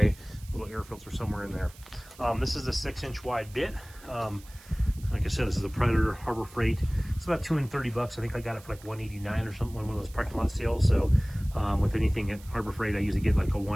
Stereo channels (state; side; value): noise; right; hiss, 22 dB below the sound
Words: little air filter somewhere in there. This is a 6-inch wide bit. Like I I said, this is a Predator Harbor Freight. It's about 230 bucks. I think I got it for like 189 or something, one of those parking lot sales. So with anything at Harbor Freight, I usually get like a